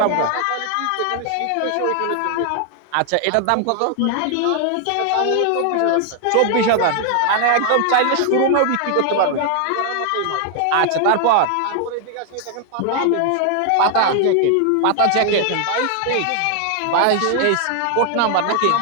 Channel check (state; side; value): different; both; correlation 0.00